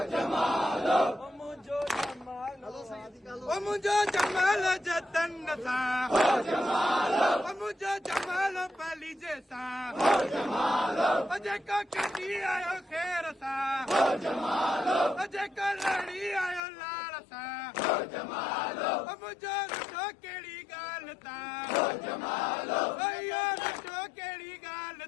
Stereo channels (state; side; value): drops out; right; at 16.6 s